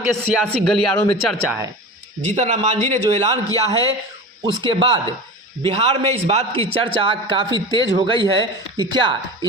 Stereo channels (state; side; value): normal; both; correlation 0.31